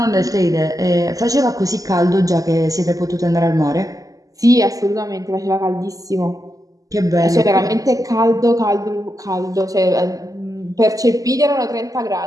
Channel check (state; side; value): late; left; 0.17 ms